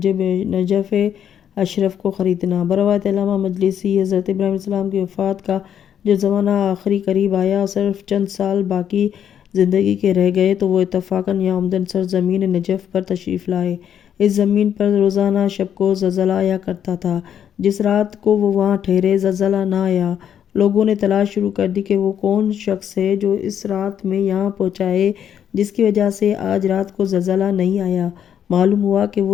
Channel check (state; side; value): quieter; right; 9.1 dB